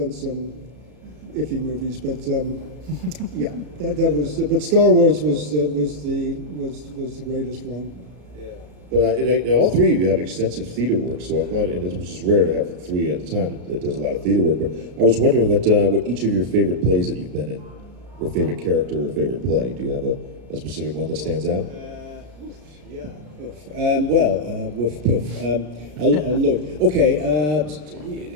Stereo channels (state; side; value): late; left; 33 ms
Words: some iffy movies, but yeah, that was. But Star Wars was the greatest one. But all three of you have extensive theater work, so I thought, which is rare to have three at a time that does a lot of theater work. But I was wondering what each of your favorite plays that you've been in, or favorite character or favorite play. Do you have a specific one that stands out? Yeah. A lot. Okay.